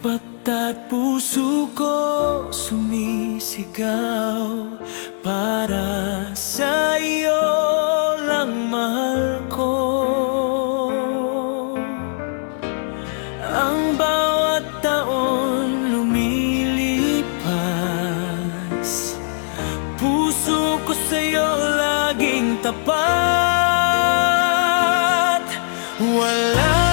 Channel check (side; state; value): right; silent; digital silence